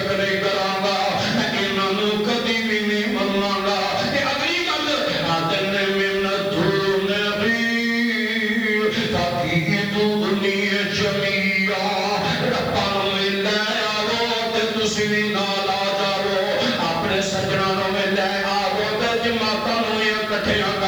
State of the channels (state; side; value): noise; right; hiss, 24 dB below the sound